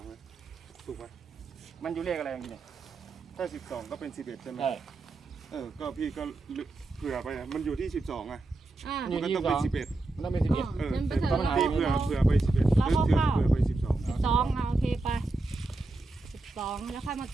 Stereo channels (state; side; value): quieter; left; 3.1 dB